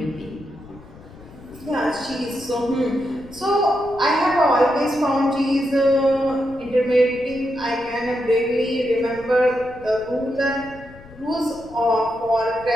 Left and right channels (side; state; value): left; noise; rumble, 20 dB below the sound